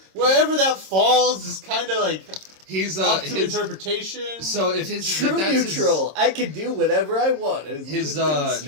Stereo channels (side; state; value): left; late; 26 ms